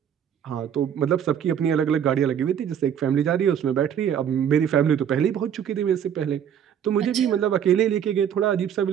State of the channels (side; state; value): left; quieter; 8.9 dB